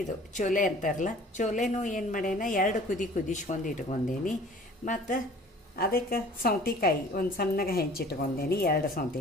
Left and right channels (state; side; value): normal; both; correlation 0.49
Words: ಇದು ಚೋಲೆ ಅಂತಾರಲ್ಲ, ಚೋಲೆನೂ ಏನು ಮಾಡ್ಯಾನ 2 ಕುದಿಸ್ಕೊಂಡು ಇಟ್ಕೊಂಡೇನಿ. ಮತ್ತು ಅದಕ್ಕೆ ಸೌತೆಕಾಯಿ ಒಂದು ಸಣ್ಣಗೆ ಹೆಂಚಿಟ್ಕೊಂಡೇನಿ, 2